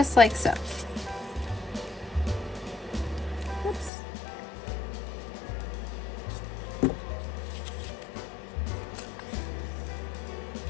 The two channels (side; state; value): right; drops out; at 3.9 s